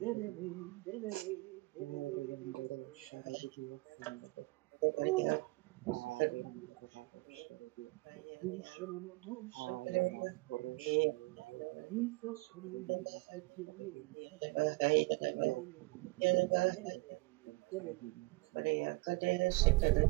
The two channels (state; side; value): quieter; left; 24.7 dB